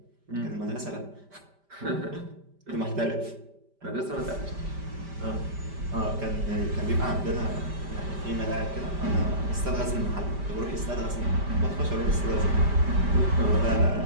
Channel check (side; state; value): left; late; 5.1 ms